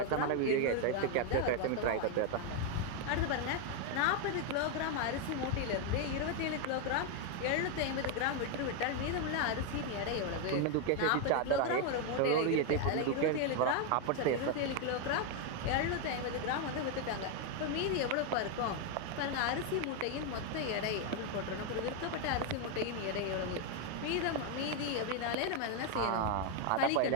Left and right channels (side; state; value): both; different; correlation 0.01